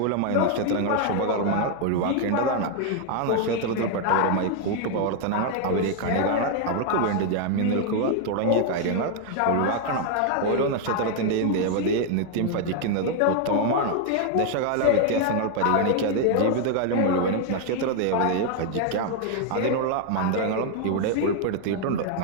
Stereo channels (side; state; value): both; different; correlation 0.00